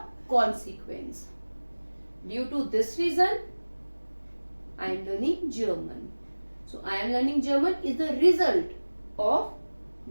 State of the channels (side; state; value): both; inverted; correlation -1.00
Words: consequence. Due to this reason, I am learning German. So, I am learning German is the result of